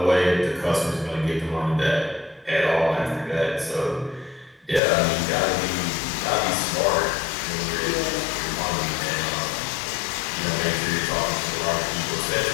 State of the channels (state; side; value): drops out; right; at 4.8 s